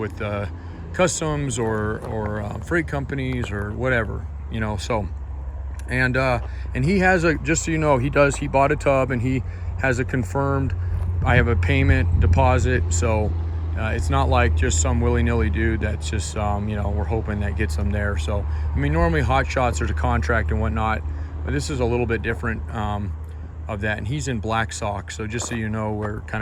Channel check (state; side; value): identical; both; correlation 1.00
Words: customs or freight companies or whatever, you know. So and he has a, just so you know, he bought a tub and he has a confirmed, I have a payment deposit. So it's not like just some willy-nilly dude that's just you know, we're hoping that gets them there. So I mean, normally hot shots, there's a contract and whatnot, but this is a little bit different of that. And he's in Black Sock, so just so you know where